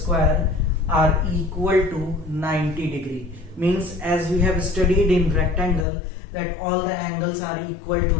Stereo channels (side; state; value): right; drops out; at 5.9 s